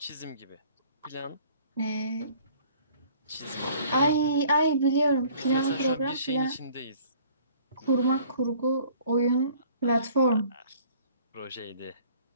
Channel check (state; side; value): inverted; both; correlation -0.55